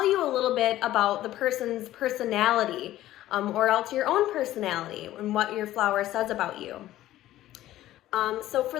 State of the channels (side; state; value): right; quieter; 14.3 dB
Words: you a little bit about the person's personality, or else your own personality and what your flower says about you. So for